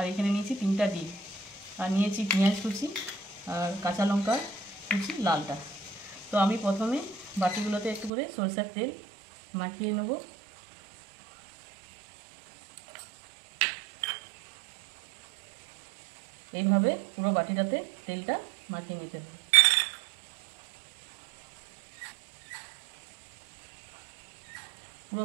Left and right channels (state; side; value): drops out; left; at 8.1 s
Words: এখানে নিয়েছি 3টা ডিম, আর নিয়েছি পেঁয়াজ কুচি আর কাঁচা লঙ্কা কুচি লালটা। তো আমি প্রথমে বাটিগুলোতে একটু করে সরষের তেল মাখিয়ে নেব। এইভাবে পুরো বাটিটাতে তেলটা মাখিয়ে নিতে হবে। পুরো